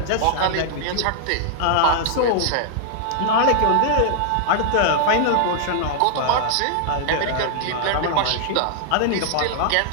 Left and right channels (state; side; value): different; both; correlation -0.01